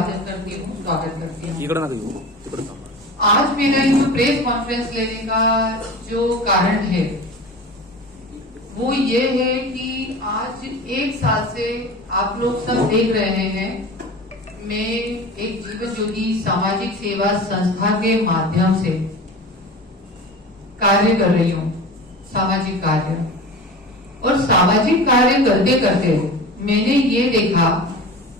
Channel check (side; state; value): both; normal; correlation 0.34